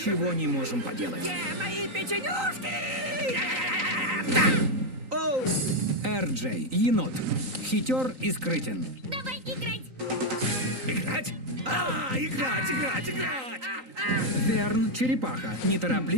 не можем поделать. Где мои печенюшки? Оу! Эр-Джей, енот. Хитер и скрытен. Давай играть! Играть? Играть! Верн, черепаха.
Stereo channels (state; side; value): late; left; 3.9 ms